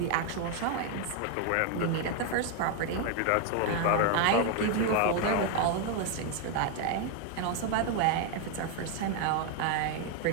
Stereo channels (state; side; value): different; both; correlation 0.01